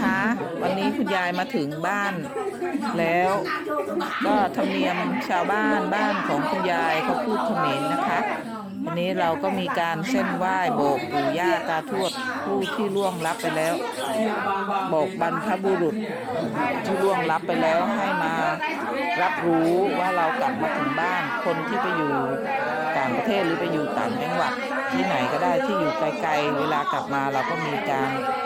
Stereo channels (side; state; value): both; identical; correlation 1.00